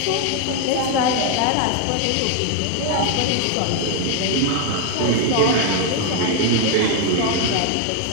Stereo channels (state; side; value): different; both; correlation 0.01